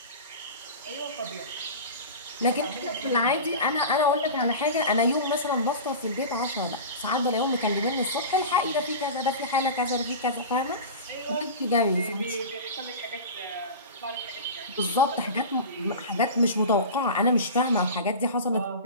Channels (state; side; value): inverted; both; correlation -0.30